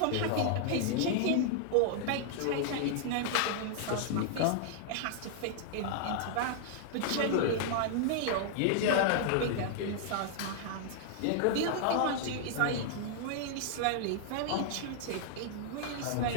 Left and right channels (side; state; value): both; different; correlation 0.00